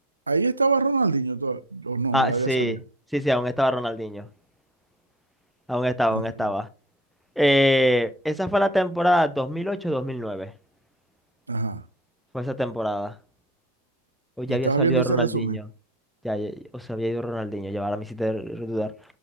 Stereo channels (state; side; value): normal; both; correlation 0.40